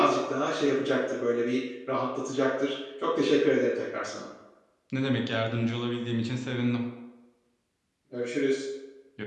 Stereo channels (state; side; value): identical; both; correlation 1.00